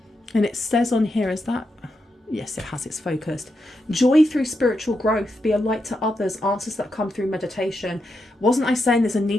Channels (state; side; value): normal; both; correlation 0.85